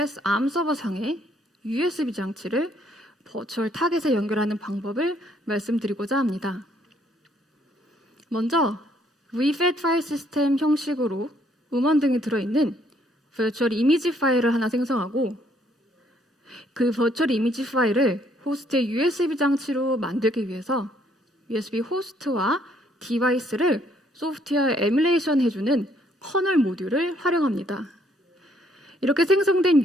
암 서버상의 USB 장치를 버추얼 타겟에 연결하는 방법을 말씀드리고자 합니다. 먼저 VFAT 파일 시스템 형식으로 음원 등이 들어있는 버추얼 이미지 파일을 하나 생성하고 그 버추얼 이미지 파일을 호스트의 USB 장치로 만들기 위해서 USB 호스트와 디바이스를 소프트웨어 에뮬레이션 해주는 커널 모듈을 활용합니다. 이렇게 생성된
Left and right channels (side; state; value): both; normal; correlation 0.67